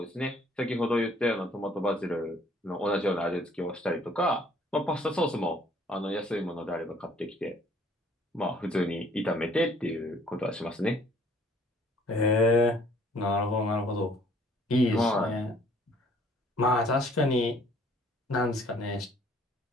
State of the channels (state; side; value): normal; both; correlation 0.59